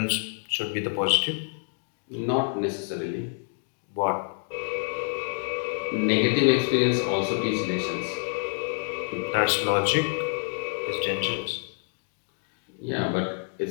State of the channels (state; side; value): silent; right; 60 dB below the other